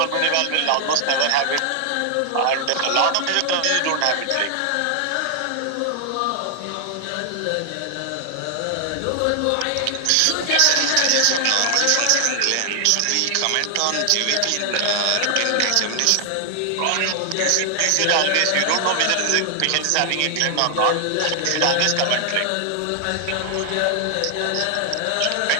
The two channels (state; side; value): different; both; correlation 0.00